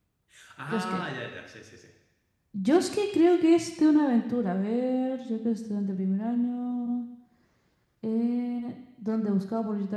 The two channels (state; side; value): identical; both; correlation 1.00